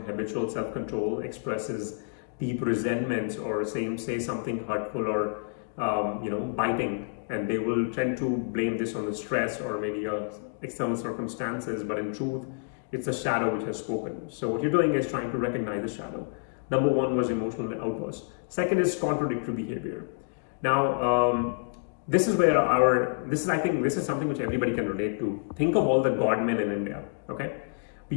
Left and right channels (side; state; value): right; silent; digital silence